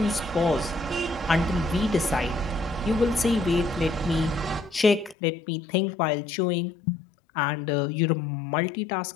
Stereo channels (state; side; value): drops out; right; at 5.2 s